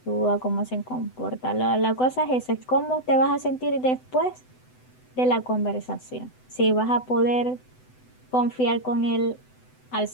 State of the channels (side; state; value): right; late; 7.9 ms